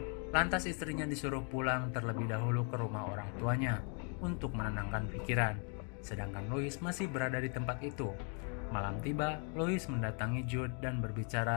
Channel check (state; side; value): quieter; right; 39.9 dB